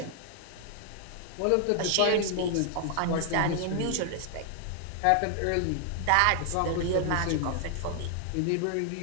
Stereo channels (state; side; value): different; both; correlation 0.00